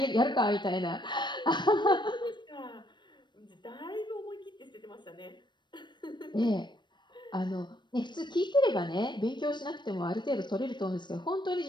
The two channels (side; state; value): right; late; 0.22 ms